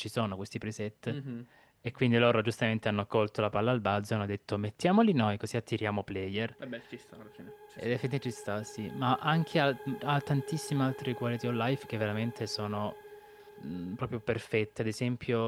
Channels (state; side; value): identical; both; correlation 1.00